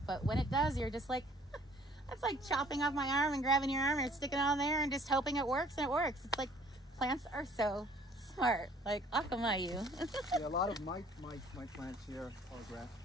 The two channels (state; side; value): normal; both; correlation 0.56